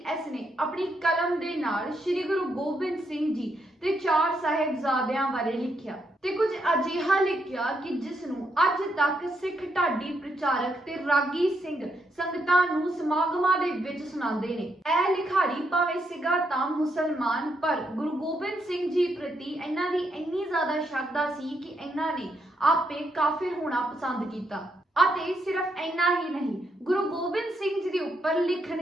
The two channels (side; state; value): both; normal; correlation 0.78